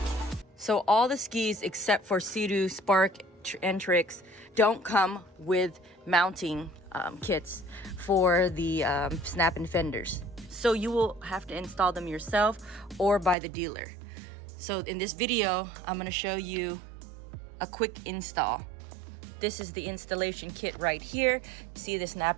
So all the skis except for Seadoo, Spark, and Trixx don't come with mounting kits for the Snap-In Fenders. So you will have to install them yourself or by the dealer. So in this video, I'm going to show you a quick install. This is the installation kit right here. See the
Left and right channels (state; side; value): drops out; left; at 13.4 s